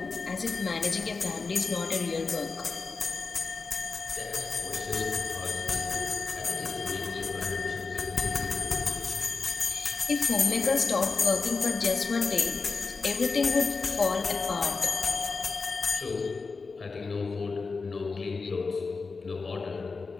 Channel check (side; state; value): right; quieter; 4.4 dB